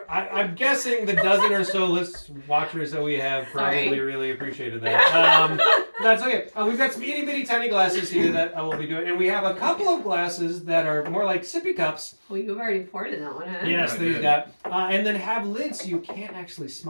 I'm guessing the dozen or so watchers that we have probably really appreciated that. That's okay. We've got some itty bitty tiny glasses here that I will be doing, and we have a couple of glasses that are more like sippy cups. Well, you've already poured in that one, huh? Yes, I they've did. got, and then have lids so you can't actually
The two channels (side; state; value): both; inverted; correlation -1.00